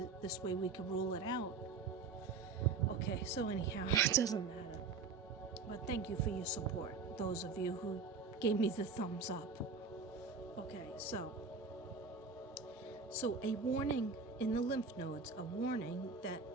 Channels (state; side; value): quieter; left; 4.7 dB